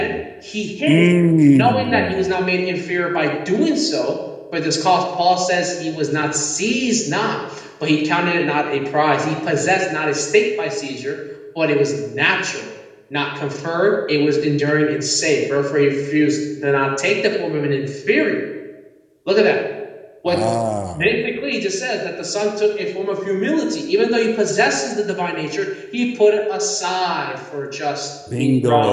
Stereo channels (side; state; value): both; identical; correlation 1.00